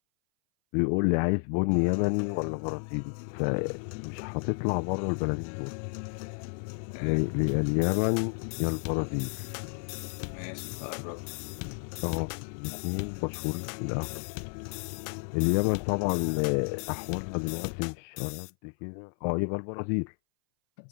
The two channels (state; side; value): silent; right; 57 dB below the other